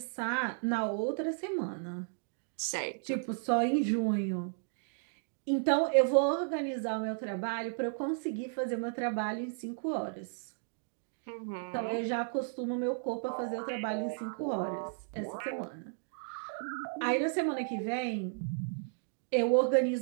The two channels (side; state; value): left; silent; digital silence